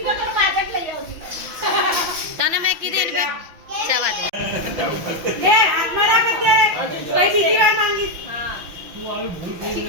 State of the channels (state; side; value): late; left; 6.0 ms